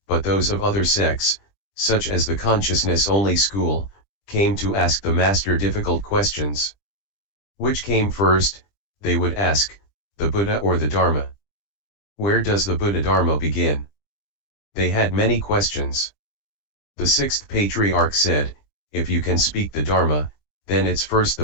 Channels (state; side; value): late; right; 20 ms